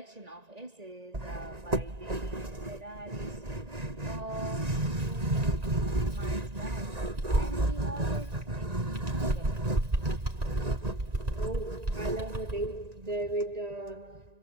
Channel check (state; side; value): late; left; 1.9 ms